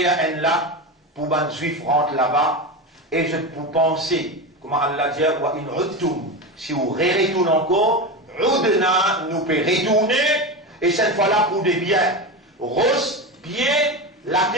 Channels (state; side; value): normal; both; correlation 0.20